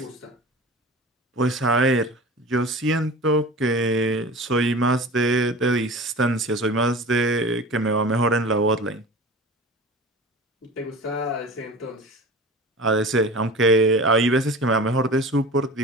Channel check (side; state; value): both; normal; correlation 0.36